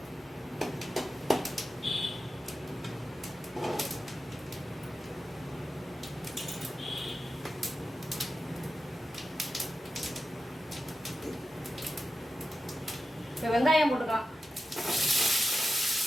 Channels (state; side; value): normal; both; correlation 0.91